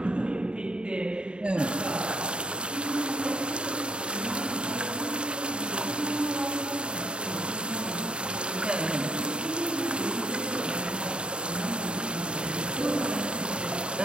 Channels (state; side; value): late; left; 0.052 ms